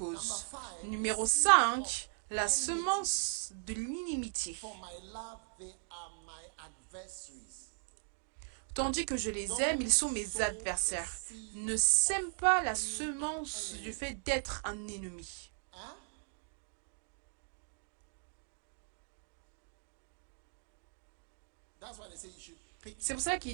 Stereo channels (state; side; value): silent; left; digital silence